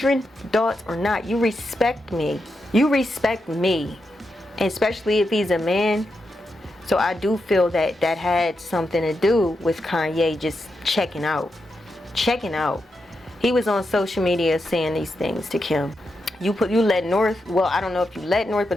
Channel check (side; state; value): both; normal; correlation 0.86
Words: adults or not, you respect me. You respect me, and especially if he's a man. So I do feel that had something to do with Kanye just checking out. He was on social media saying these things to Kim. You let North, well, I don't know if you let North,